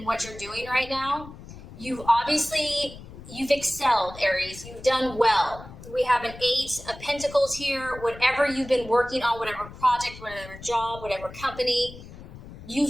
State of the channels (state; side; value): noise; left; rumble, 15 dB below the sound